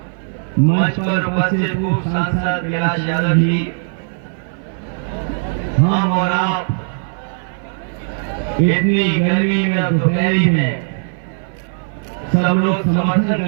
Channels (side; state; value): left; silent; 56 dB below the other